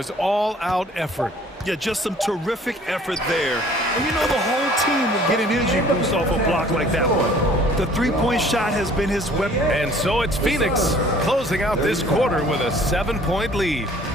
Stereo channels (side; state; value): both; normal; correlation 0.54